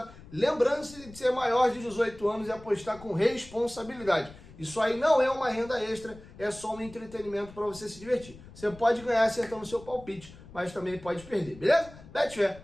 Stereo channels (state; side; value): noise; left; rumble, 19 dB below the sound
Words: Lembrando-se de ser maior de 18 anos e apostar com responsabilidade. Isso aí não é uma renda extra, é só um entretenimento para você se divertir. Você pode ganhar acertando o seu palpite, mas também pode perder, beleza?